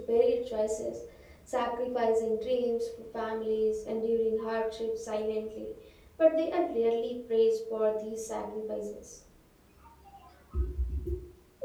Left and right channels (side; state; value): both; identical; correlation 1.00